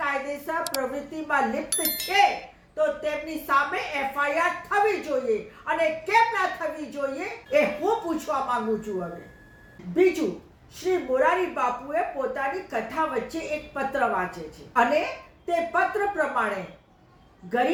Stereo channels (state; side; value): identical; both; correlation 1.00